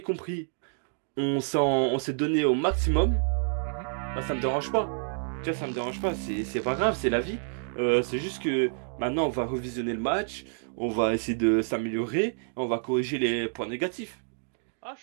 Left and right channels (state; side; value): silent; left; digital silence